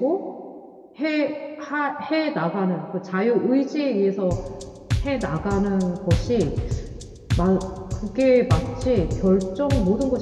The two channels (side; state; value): both; identical; correlation 1.00